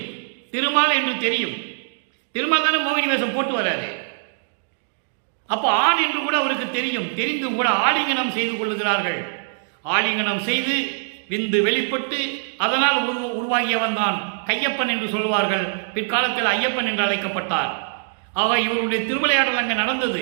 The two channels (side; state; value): left; silent; digital silence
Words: திருமால் என்று தெரியும். திருமால் தானே மோகினி வேஷம் போட்டு வராரு. அப்போ ஆண் என்று கூட அவருக்கு தெரியும். தெரிந்தும் கூட ஆலிங்கனம் செய்து கொள்ளுகிறார்கள். ஆலிங்கனம் செய்து விந்து வெளிப்பட்டு அதனால் உருவாகியவன் தான் கையப்பன் என்று சொல்வார்கள். பிற்காலத்தில் ஐயப்பன் என்று அழைக்கப்பட்டார். ஆக இவருடைய திருவிளையாடல் அங்கே நடந்தது.